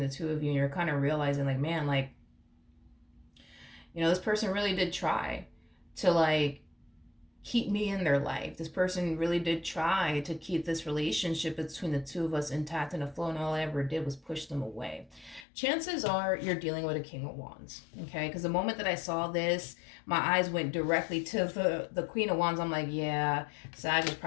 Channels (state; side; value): drops out; right; at 15.5 s